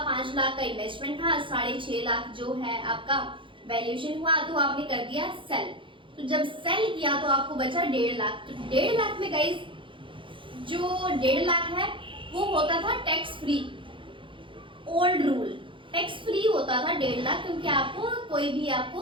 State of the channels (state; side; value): late; left; 0.25 ms